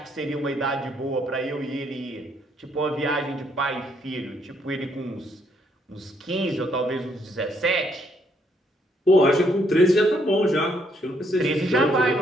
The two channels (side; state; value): both; normal; correlation 0.71